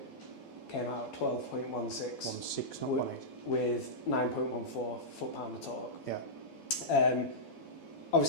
came out at 12.16 1.6, not 1.8. with 9.14 foot-pound of torque. Yeah.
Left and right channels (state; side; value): late; right; 12 ms